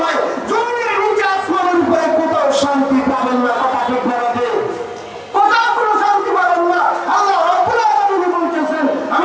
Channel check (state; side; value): identical; both; correlation 1.00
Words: নয়, জমিনের নিচে আসমানের উপরে কোথাও শান্তি পাবেন না। কথা ঠিক বলাতে কোথাও কোনো শান্তি পাবেন না। আল্লাহ রাব্বুল আলামিন বলতেছেন,